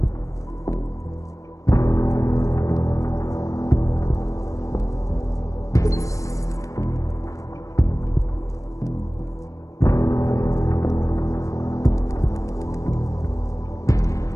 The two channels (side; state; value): right; late; 0.16 ms